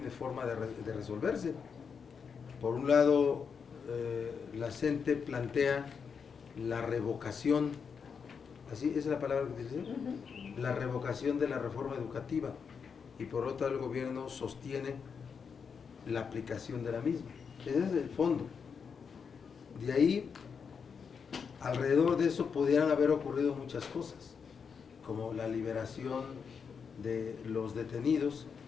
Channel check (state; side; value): quieter; right; 6.2 dB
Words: forma de resolverse. Por un lado, la CENTE plantea la revocación, así es la palabra que dice, la revocación de la reforma educativa, y por otro lado el gobierno sostiene la aplicación de la misma. Ese es el fondo. De ahí, alrededor de eso pudieran haber ocurrido muchas cosas, como la liberación de los detenidos,